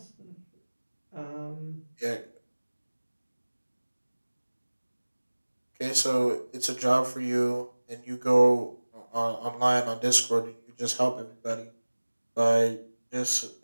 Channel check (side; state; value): both; inverted; correlation -1.00